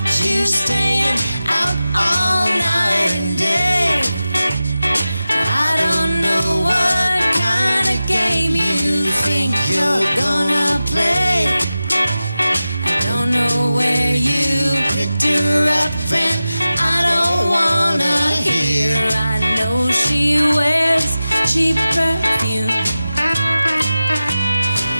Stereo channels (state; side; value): inverted; both; correlation -0.94